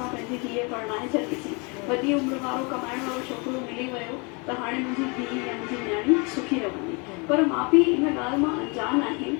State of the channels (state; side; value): quieter; right; 30.9 dB